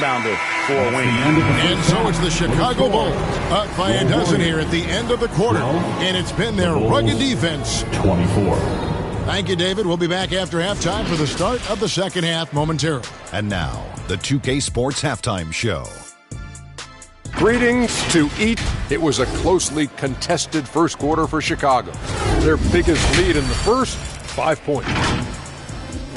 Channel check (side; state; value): both; identical; correlation 1.00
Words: for a wing. And so it's the Chicago Bulls up by a dozen here at the end of the quarter. And it's been their rugged defense. 24. Thank you, David. We'll be back after halftime for the start of the second half momentarily. And now, the 2K Sports Halftime Show. Greetings to eat. It was a closely contested first quarter for Chicago. Their biggest lead in the first, 5 points.